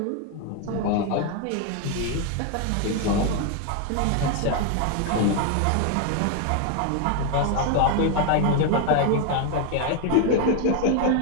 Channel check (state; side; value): different; both; correlation 0.01